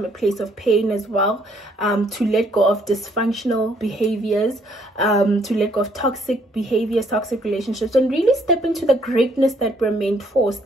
a place of pain as well, to let go of dysfunctional behaviors, to let go of toxic behaviors, toxic relationships, and really step into the greatness that we're meant for,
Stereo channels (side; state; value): both; normal; correlation 0.67